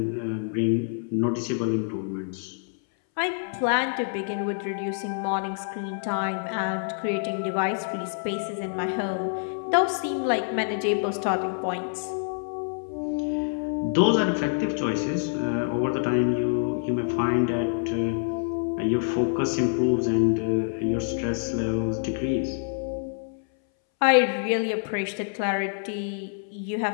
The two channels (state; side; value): silent; right; 61 dB below the other